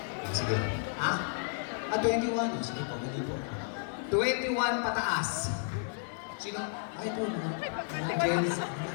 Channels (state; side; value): silent; right; digital silence